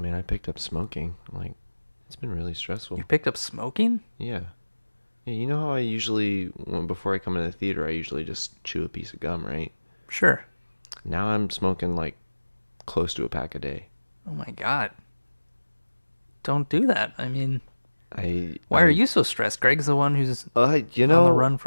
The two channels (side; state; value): both; inverted; correlation -1.00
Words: I picked up smoking. Like, it's been really stressful. You picked up smoking? Yeah. Yeah, you know how I usually, before I come into the theater, I usually just chew a piece of gum, right? Sure. Now I'm smoking like close to a pack a day. Oh my God. Don't do that. I mean, why I are you so stressed? Greg's the one who's on the run